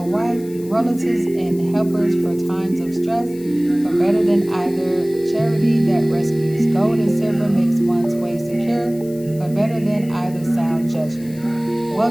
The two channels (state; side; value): noise; left; hiss, 22 dB below the sound